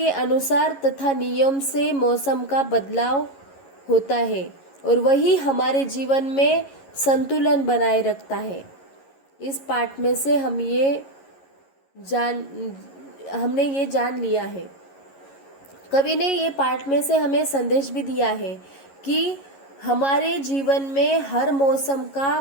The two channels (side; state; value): right; late; 11 ms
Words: अनुसार तथा नियम से मौसम का बदलाव होता है और वही हमारे जीवन में संतुलन बनाए रखता है। इस पाठ में से हमने ये जान लिया है। कवि ने ये पाठ में से हमें संदेश भी दिया है कि हमारे जीवन में हर मौसम का